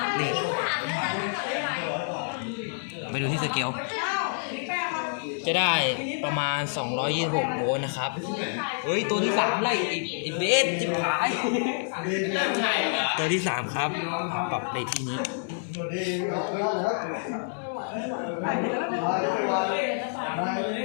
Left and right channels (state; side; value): silent; right; digital silence